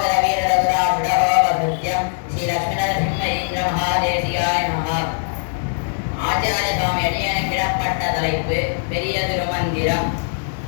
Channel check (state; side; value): silent; right; digital silence